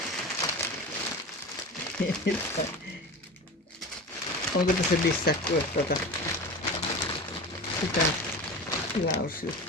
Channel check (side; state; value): both; normal; correlation 0.30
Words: Onko tässä lisää kuin sitä